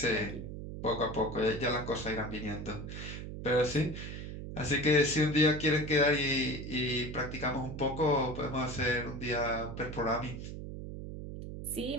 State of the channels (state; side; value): noise; right; hum, 8 dB below the sound